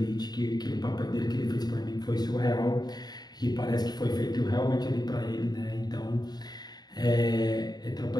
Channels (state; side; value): late; right; 0.20 ms